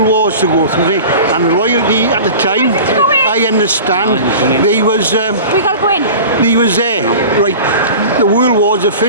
wars to go through, and the royalty at the time, I understand, they was We gotta go in. they was there, right? The world wars are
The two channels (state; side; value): inverted; both; correlation -0.37